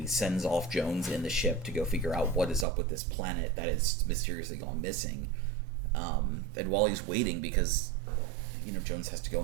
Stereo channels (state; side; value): drops out; left; at 2.7 s